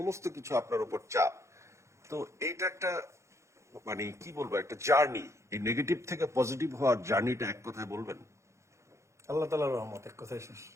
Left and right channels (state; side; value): late; left; 0.14 ms